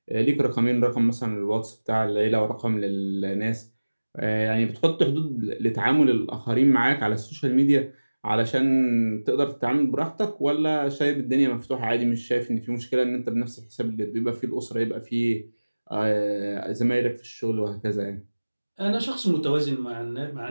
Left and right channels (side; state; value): both; inverted; correlation -1.00